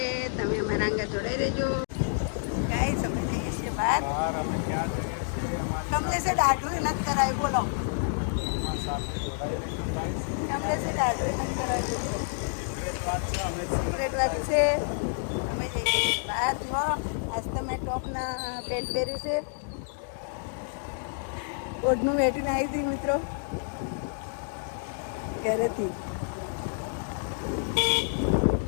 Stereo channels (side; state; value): right; silent; digital silence